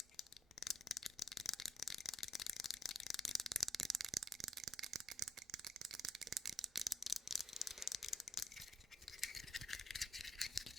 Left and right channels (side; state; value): both; normal; correlation 0.73